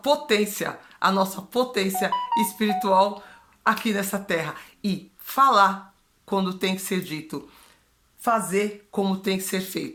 espiritual aqui nessa terra e falar quando tem que ser dito. fazer como tem que ser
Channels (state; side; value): identical; both; correlation 1.00